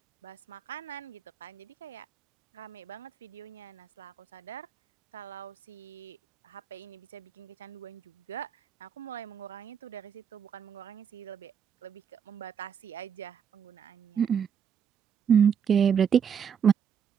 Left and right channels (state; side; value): quieter; left; 7.6 dB